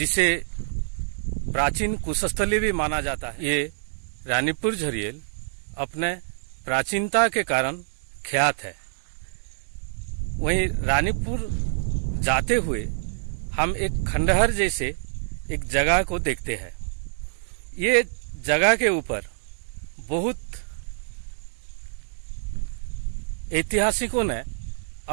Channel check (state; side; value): silent; left; digital silence